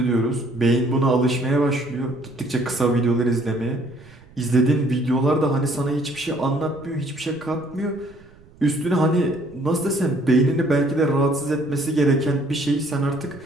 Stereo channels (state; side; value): noise; right; rumble, 25 dB below the sound